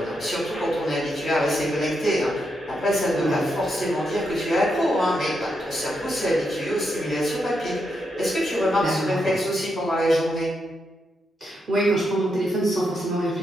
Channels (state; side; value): normal; both; correlation 0.82